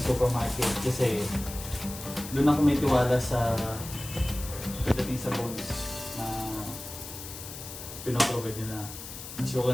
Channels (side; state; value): left; noise; hiss, 11 dB below the sound